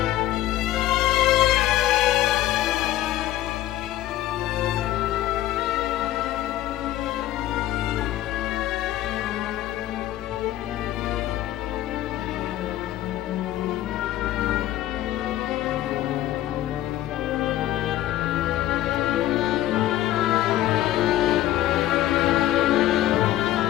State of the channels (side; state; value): right; quieter; 14.1 dB